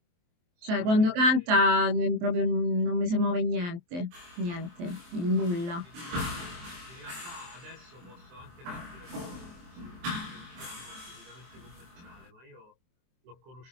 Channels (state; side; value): late; left; 23 ms